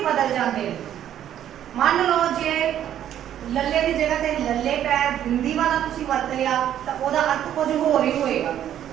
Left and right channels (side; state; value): left; quieter; 10.8 dB